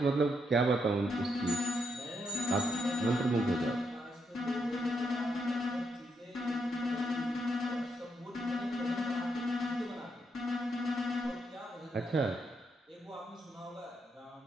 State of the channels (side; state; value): both; normal; correlation 0.79